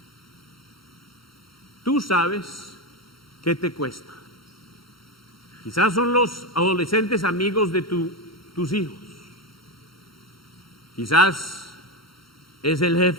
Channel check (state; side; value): late; right; 0.73 ms